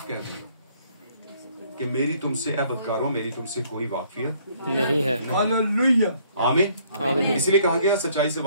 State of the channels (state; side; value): inverted; both; correlation -0.63